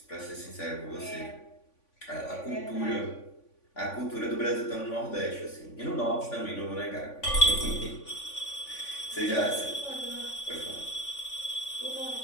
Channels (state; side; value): late; right; 3.5 ms